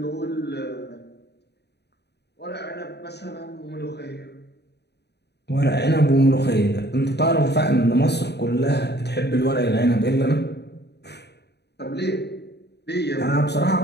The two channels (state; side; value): late; right; 0.49 ms